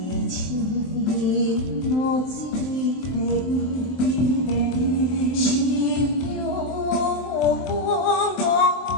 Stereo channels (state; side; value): late; right; 23 ms